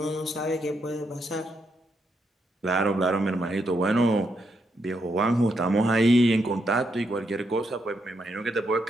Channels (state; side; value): normal; both; correlation 0.80